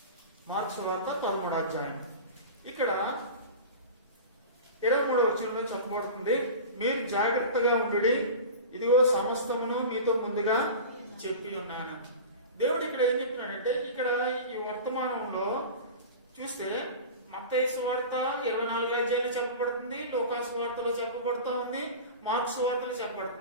మార్క్స్ వార్త 13వ అధ్యాయం. ఇక్కడ 23వ వచనంలో చెప్పబడుతుంది, మీరు జాగ్రత్తగా ఉండుడి, ఇదిగో సమస్తమును మీతో ముందుగా చెప్పి ఉన్నాను. దేవుడు ఇక్కడ ఏం చెప్తున్నాడంటే, ఇక్కడ ఈ వర్తమానంలో చూస్తే మత్తయి సువార్త 24వ అధ్యాయంలో చెప్పబడుతుంది, లూకాసు వార్తలో చెప్పబడుతూ ఉంది, మార్క్స్ వార్తలో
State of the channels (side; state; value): both; inverted; correlation -0.32